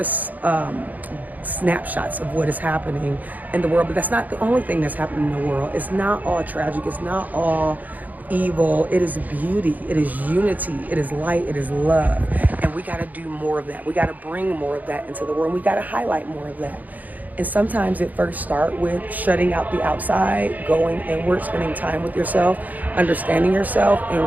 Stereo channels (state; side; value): late; left; 0.080 ms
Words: snapshots of what is happening in the world. But that's not the only thing that's happening in the world. It's not all tragic, it's not all evil. It is beauty, it is unity, it is light, it is love. And we got to do more of that. We got to bring more of that into the world. We got to highlight more of that. And sometimes it first starts with shutting out the outside, going inward, spending time with yourself, understanding yourself,